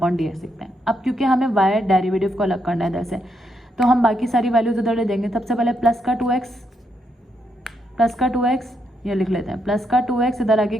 लिखते हैं। अब क्योंकि हमें y डेरिवेटिव को अलग करना है इधर से, तो हम बाकी सारी वैल्यूज उधर ले देंगे। सबसे पहले प्लस का 2x ये लिख लेते हैं, प्लस का 2x, इधर आगे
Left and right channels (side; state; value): both; normal; correlation 0.79